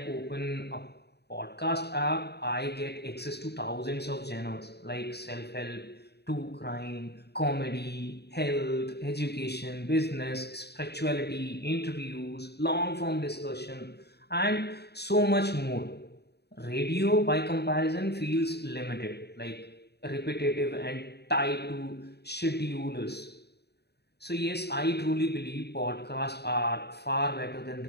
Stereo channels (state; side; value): late; right; 0.48 ms